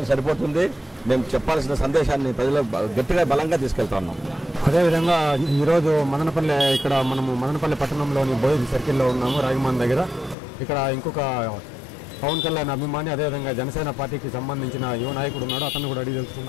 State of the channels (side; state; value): right; drops out; at 10.4 s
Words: సరిపోతుంది. మేము చెప్పాల్సిన సందేశాన్ని ప్రజలు గట్టిగా బలంగా తీసుకెళ్తా ఉన్నాం. అదేవిధంగా ఈరోజు మనము మదనపల్లి పట్టణంలోని బోయి సర్కిల్లో ఉన్నాము, రాగిమాన్ దగ్గర. ఇక్కడ ఇంకొక పవన్ కళ్యాణ్ అభిమాని అదేవిధంగా జనసేన పార్టీకి సంబంధించిన యువ నాయకుడు ఉన్నాడు, అతను కూడా అడిగి